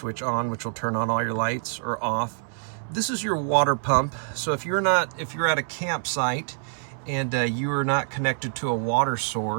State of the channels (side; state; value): left; silent; 61 dB below the other